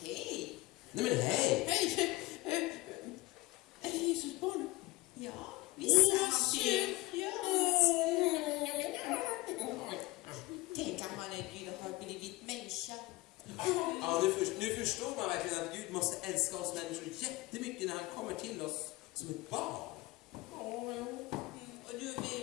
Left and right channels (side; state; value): right; quieter; 21.0 dB